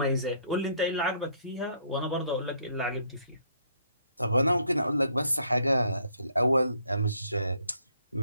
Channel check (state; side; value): inverted; both; correlation -0.66